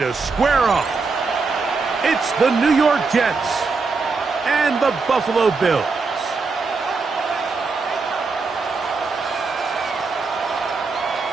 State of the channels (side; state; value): left; quieter; 4.4 dB